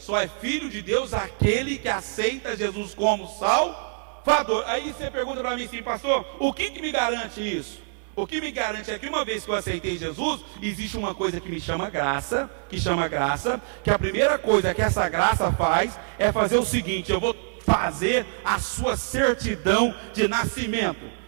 é filho de Deus aquele que aceita Jesus como Salvador. Aí você pergunta para mim assim: pastor, o que me garante isso? O que me garante é que uma vez que eu aceitei Jesus, existe uma coisa que me chama graça, que a primeira coisa que essa graça faz é fazer o seguinte: eu vou fazer a sua certidão de nascimento.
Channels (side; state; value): left; silent; digital silence